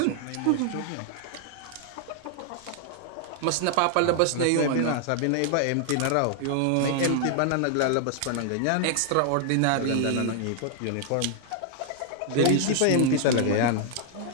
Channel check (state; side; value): different; both; correlation 0.00